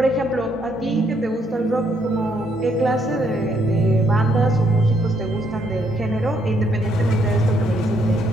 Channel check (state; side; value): normal; both; correlation 0.72